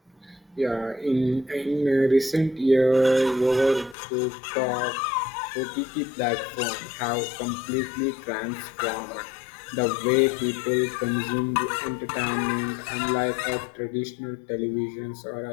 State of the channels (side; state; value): right; drops out; at 4.0 s